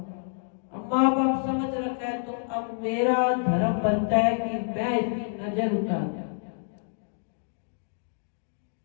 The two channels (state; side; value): silent; right; digital silence